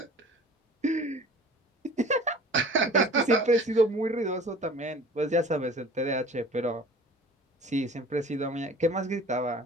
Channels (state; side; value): normal; both; correlation 0.45